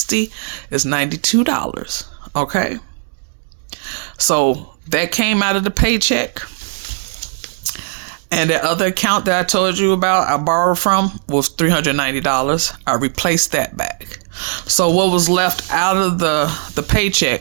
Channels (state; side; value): silent; left; digital silence